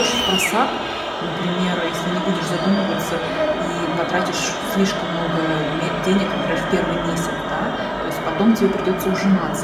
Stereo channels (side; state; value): both; identical; correlation 1.00